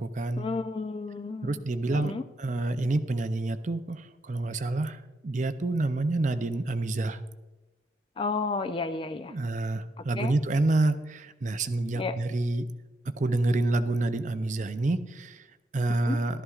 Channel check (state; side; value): normal; both; correlation 0.80